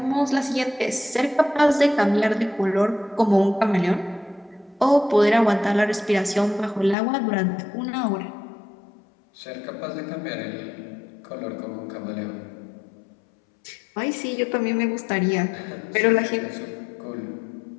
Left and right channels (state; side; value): drops out; right; at 7.0 s